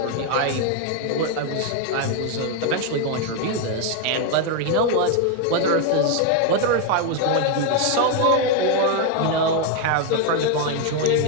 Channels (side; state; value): both; different; correlation 0.01